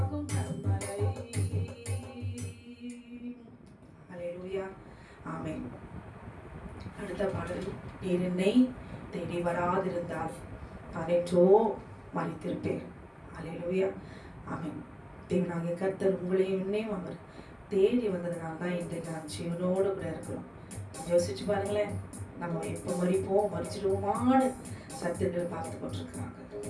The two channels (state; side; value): identical; both; correlation 1.00